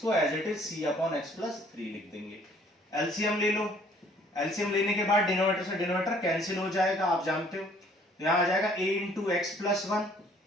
as it is c upon x plus three लिख देंगे। एलसीएम ले लो, एलसीएम लेने के बाद डिनोमिनेटर से डिनोमिनेटर कैंसिल हो जाएगा, आप जानते हो। तो यहां आ जाएगा a into x plus one,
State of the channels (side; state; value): both; normal; correlation 0.59